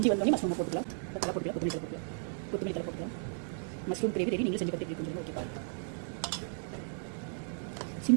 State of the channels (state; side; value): silent; left; digital silence